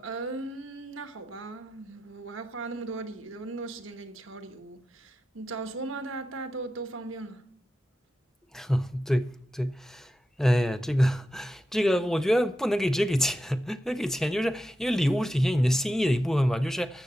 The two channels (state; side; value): normal; both; correlation 0.90